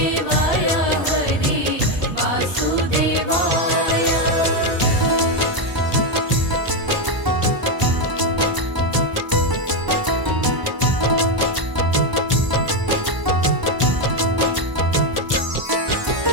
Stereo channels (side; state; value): left; late; 1.0 ms